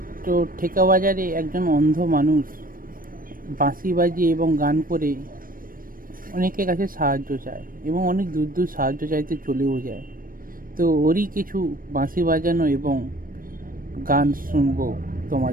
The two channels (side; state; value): left; late; 0.41 ms